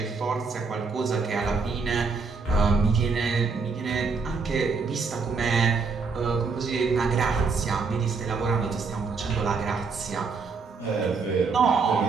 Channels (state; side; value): quieter; left; 4.7 dB